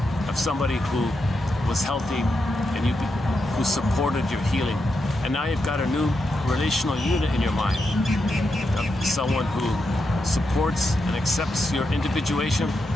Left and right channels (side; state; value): both; normal; correlation 0.85